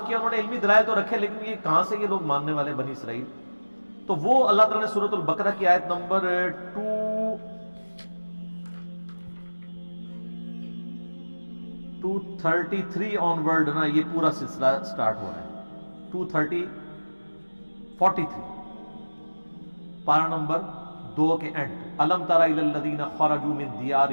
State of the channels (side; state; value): both; inverted; correlation -1.00